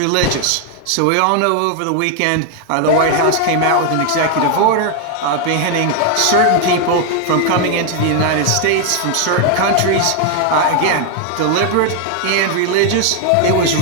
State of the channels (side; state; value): both; different; correlation 0.00